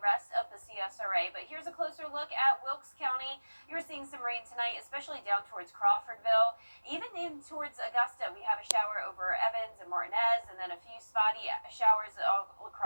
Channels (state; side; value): inverted; both; correlation -1.00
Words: rest of the CSRA. But here's a closer look at Wilkes County. You're seeing some rain tonight, especially down towards Crawfordville. Even in towards Augusta, we have a shower over Evans and Martinez, and then a few spotty showers all